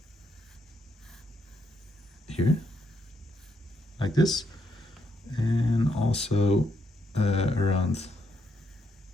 here like this, and also around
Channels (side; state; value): both; normal; correlation 0.77